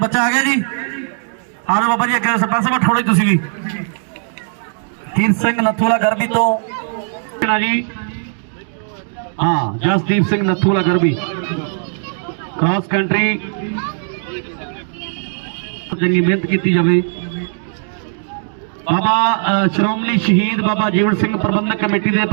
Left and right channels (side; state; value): left; silent; digital silence